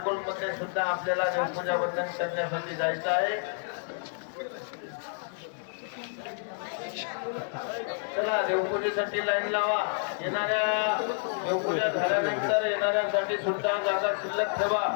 सुद्धा आपल्याला देवपूजा वंदन करण्यासाठी जायचं आहे. चला देवपूजेसाठी लाईन लावा. येणाऱ्या देवपूजा झाल्यानंतर येणाऱ्यांसाठी सुद्धा जागा शिल्लक ठेवा.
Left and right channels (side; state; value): right; silent; digital silence